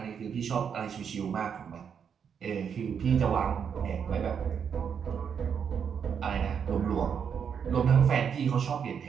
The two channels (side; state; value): left; quieter; 7.3 dB